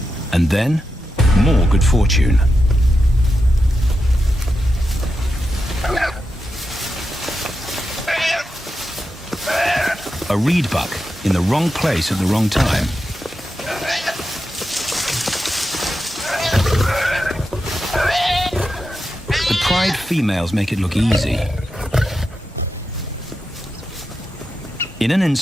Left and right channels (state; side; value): normal; both; correlation 0.88